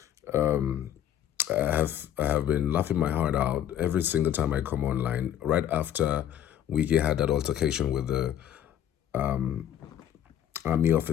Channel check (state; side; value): quieter; right; 10.6 dB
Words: I have been laughing my heart out every single time I come online. Right after Wike had that altercation with the army